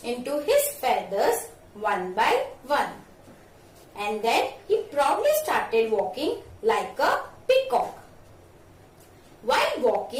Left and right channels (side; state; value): both; identical; correlation 1.00